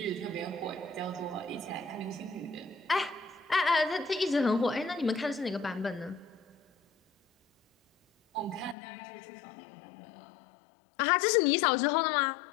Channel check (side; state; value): right; drops out; at 8.8 s